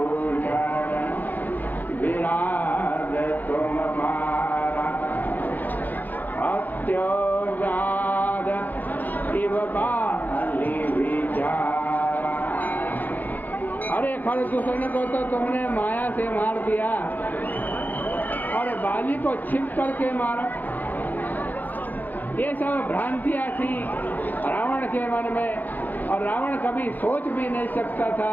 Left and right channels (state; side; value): late; right; 0.084 ms